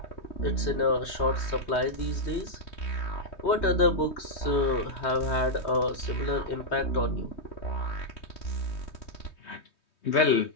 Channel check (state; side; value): late; right; 3.2 ms